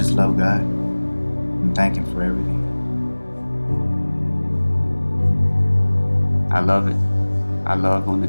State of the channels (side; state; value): both; inverted; correlation -1.00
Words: love God and thank Him for everything. I love it. I love when the